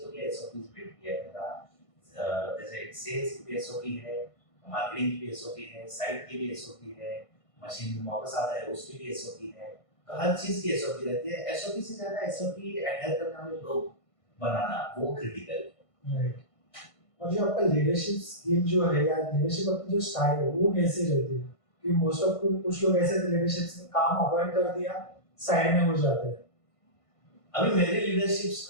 के एसओपीज बिल्ड किया है मेरा। जैसे सेल्स की भी एसओपी है, मार्केटिंग की भी एसओपी है, साइट की भी एसओपी है, मशीन वापस आता है उसकी भी एसओपी है। तो हर चीज की एसओपी रहती है। एसओपी से ज्यादा एसओपी एडहेयर करने वाले लोग बनाना वो क्रिटिकल है। राइट। और जो आपका लीडरशिप स्किल जो है या लीडरशिप आपकी जो स्टाइल है वो कैसे रहती है? कि मोस्ट ऑफ कुछ लोग ऐसे लीडरशिप में काम अवॉइड कर दिया, साइड में हो जाते हैं। अभी मेरी लीडरशिप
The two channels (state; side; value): late; right; 1.5 ms